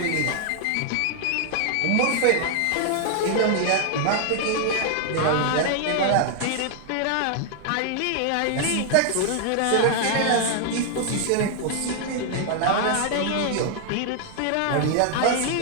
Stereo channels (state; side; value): different; both; correlation 0.00